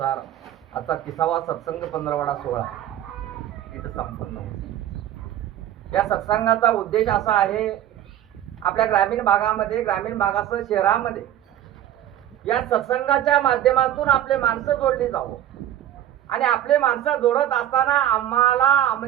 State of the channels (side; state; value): left; quieter; 11.8 dB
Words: आजचा 30वा सत्संग 15वाडा सोहळा इथं संपन्न होतो। या सत्संगाचा उद्देश असा आहे, आपल्या ग्रामीण भागासह शहरामध्ये या सत्संगाच्या माध्यमातून आपले माणसं जोडली जावं आणि आपले माणसं जोडत असताना आम्हाला